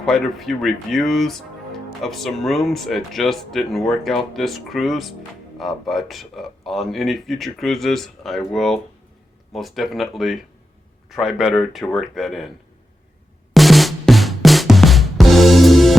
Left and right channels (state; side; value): normal; both; correlation 0.89